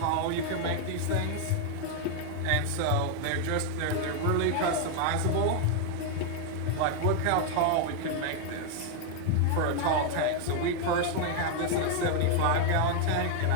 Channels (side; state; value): both; different; correlation 0.00